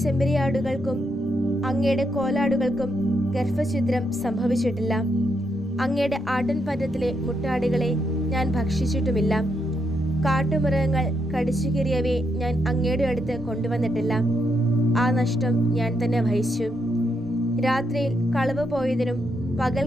ചെമ്മരിയാടുകൾക്കും അങ്ങയുടെ കോലാടുകൾക്കും ഗർഭഛിദ്രം സംഭവിച്ചിട്ടില്ല. അങ്ങയുടെ ആട്ടിൻപറ്റത്തിലെ മുട്ടാടുകളെ ഞാൻ ഭക്ഷിച്ചിട്ടുമില്ല. കാട്ടുമൃഗങ്ങൾ കടിച്ചു കീറിയവയെ ഞാൻ അങ്ങയുടെ അടുത്ത് കൊണ്ടുവന്നിട്ടില്ല. ആ നഷ്ടം ഞാൻ തന്നെ വഹിച്ചു. രാത്രിയിൽ കളവ് പോയതിനും പകൽ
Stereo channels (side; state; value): both; normal; correlation 0.79